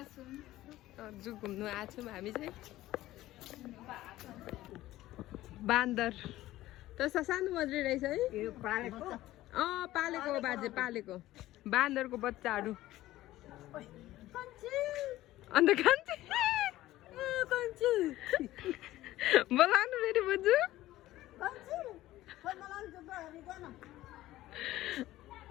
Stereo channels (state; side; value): quieter; right; 15.7 dB